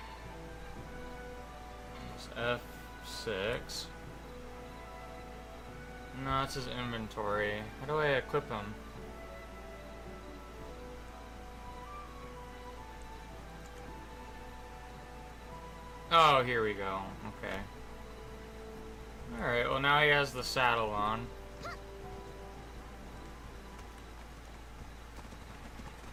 It's F6. No, it's his inventory. How do I equip him? Oh, here we go. Okay. Alright, well now he has the saddle on.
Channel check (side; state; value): both; identical; correlation 1.00